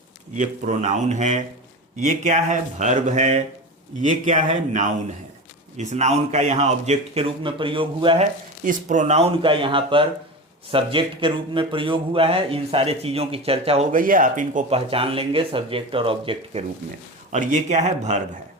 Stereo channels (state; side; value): normal; both; correlation 0.26